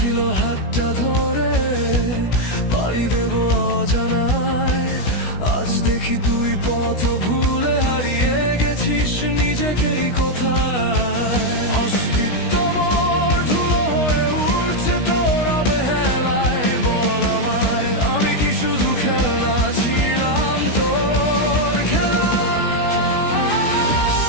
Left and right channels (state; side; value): late; right; 16 ms